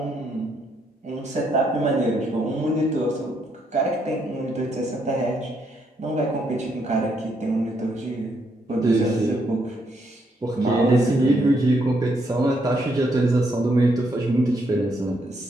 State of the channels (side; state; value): both; normal; correlation 0.75